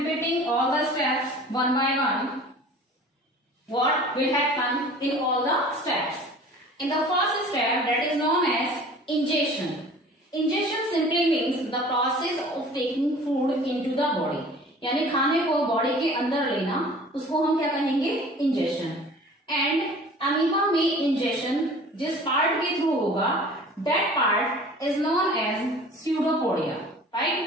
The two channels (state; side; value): normal; both; correlation 0.45